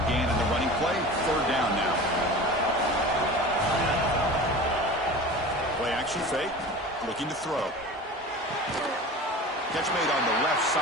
gain in the running play. 3rd down now. Play action fake. Looking to throw. Catch made on the left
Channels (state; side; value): normal; both; correlation 0.36